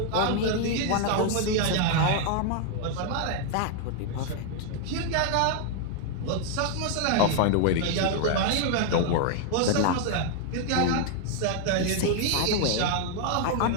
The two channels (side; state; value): both; different; correlation 0.00